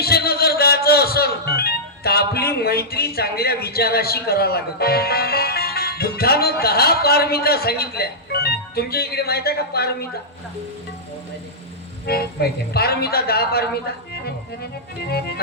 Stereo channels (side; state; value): both; normal; correlation -0.12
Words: जर जायचं असेल तर आपली मैत्री चांगल्या विचाराशी करावं लागत बुद्धानं 10 पारमिता सांगितल्या तुमच्या इकडे माहित आहे का पारमिता माहिती आहे. पारमिता 10 पारमिता